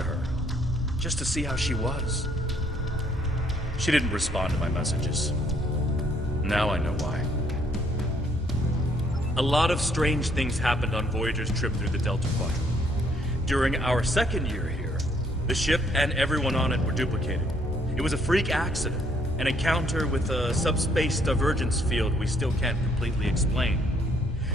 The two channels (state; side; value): normal; both; correlation 0.66